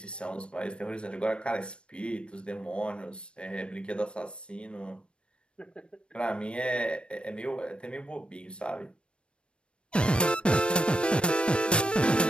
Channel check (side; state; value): right; late; 0.057 ms